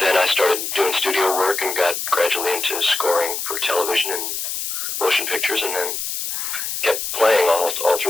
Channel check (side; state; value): left; noise; hiss, 4 dB below the sound